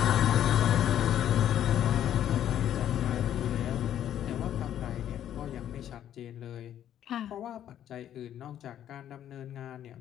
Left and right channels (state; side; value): quieter; right; 10.8 dB